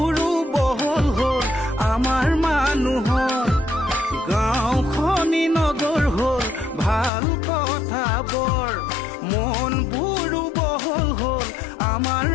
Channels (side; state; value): right; drops out; at 7.1 s